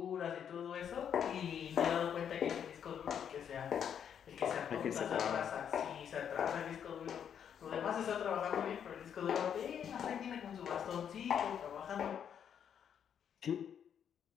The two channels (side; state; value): right; quieter; 8.4 dB